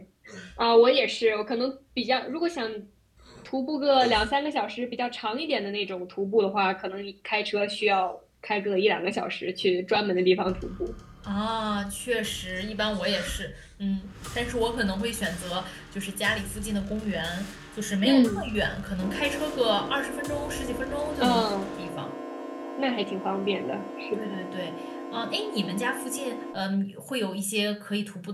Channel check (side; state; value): both; identical; correlation 1.00